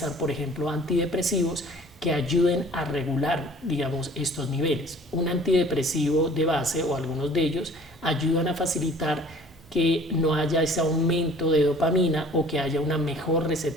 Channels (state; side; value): normal; both; correlation 0.50